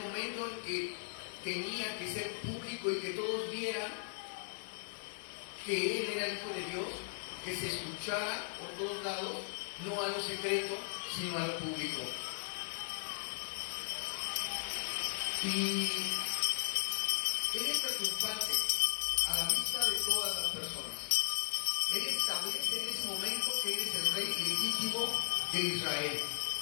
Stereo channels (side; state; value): right; silent; 53 dB below the other